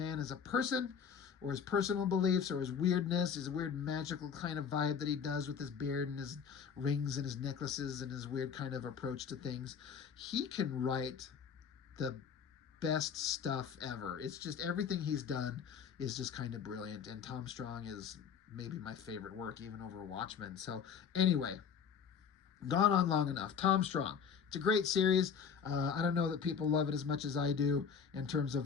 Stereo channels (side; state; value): right; quieter; 7.0 dB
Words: as a person, or his personal beliefs, or his weirdness, his weird magical kind of vibe that he does with his beard and his rings and his necklaces and his weird kind of approach to things, he can write the best stuff ever. It's just everything he's done is just kind of brilliant, and Tom Strong is maybe my favorite work, even over Watchmen. So anyway, gone on long enough. Tom Strong, it's a great series. I don't know that people love it as much as I do in terms